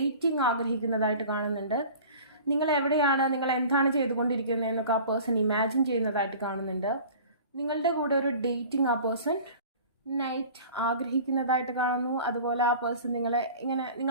ആഗ്രഹിക്കുന്നതായിട്ട് കാണുന്നുണ്ട്. നിങ്ങൾ എവിടെയാണ്, നിങ്ങൾ എന്താണ് ചെയ്തുകൊണ്ടിരിക്കുന്നതെന്നൊക്കെ ആ പേഴ്സൺ ഇമാജിൻ ചെയ്യുന്നതായിട്ട് കാണുന്നുണ്ട്. നിങ്ങളുടെ കൂടെ ഒരു ഡേറ്റിംഗ് ആ പേഴ്സൺ നൈറ്റ് ആഗ്രഹിക്കുന്നതായിട്ട് കാണുന്നു. അതുപോലെ ആ പേഴ്സൺ നിങ്ങളെ ഇങ്ങനെ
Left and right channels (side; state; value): both; inverted; correlation -0.42